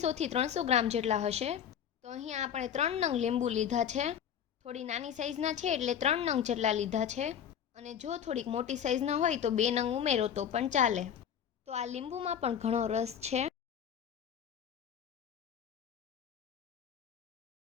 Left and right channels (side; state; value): right; quieter; 8.8 dB